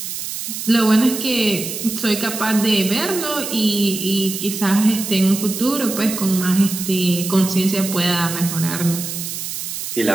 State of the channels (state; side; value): noise; right; hiss, 6 dB below the sound